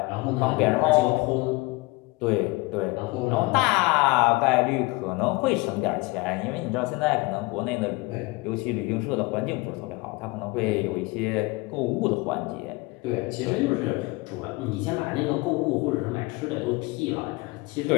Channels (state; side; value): quieter; right; 23.9 dB